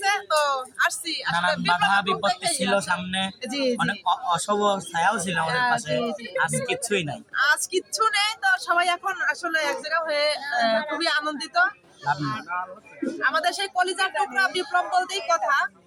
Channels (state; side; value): identical; both; correlation 1.00